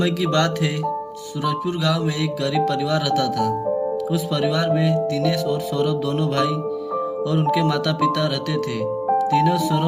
की बात है। सूरजपुर गांव में एक गरीब परिवार रहता था। उस परिवार में दिनेश और सौरभ दोनों भाई और उनके माता पिता रहते थे। दिनेश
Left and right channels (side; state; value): both; identical; correlation 1.00